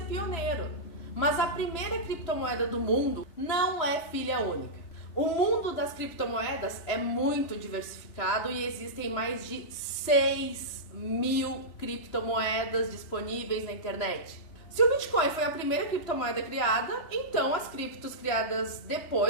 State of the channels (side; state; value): right; late; 3.0 ms